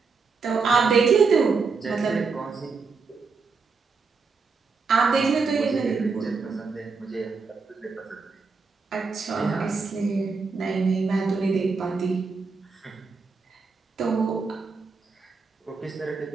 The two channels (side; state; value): left; quieter; 4.7 dB